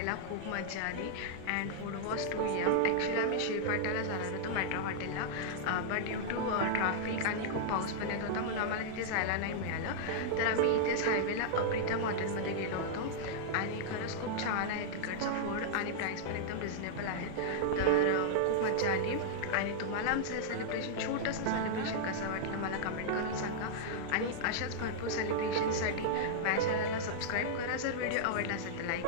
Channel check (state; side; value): different; both; correlation -0.01